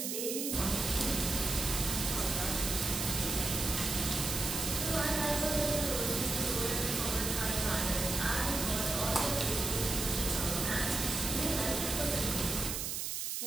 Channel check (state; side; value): noise; right; hiss, 2 dB below the sound